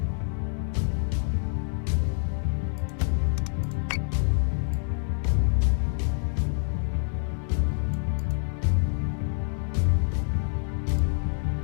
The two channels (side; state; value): right; silent; 60 dB below the other